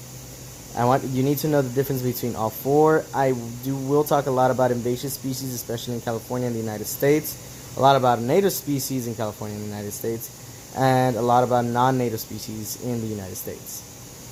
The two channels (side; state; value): both; identical; correlation 1.00